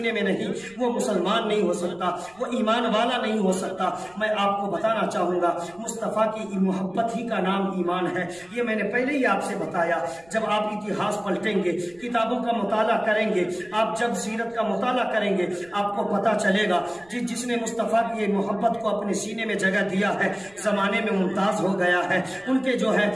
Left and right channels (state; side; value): noise; right; rumble, 28 dB below the sound